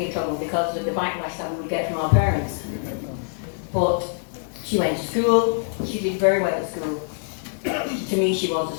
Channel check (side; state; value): right; silent; digital silence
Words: in trouble because of the backlash that we would get from our parents. But she went to school, she did very well at school. To me, she was a